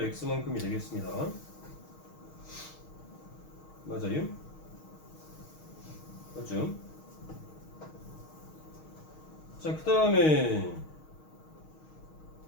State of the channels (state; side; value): late; right; 6.4 ms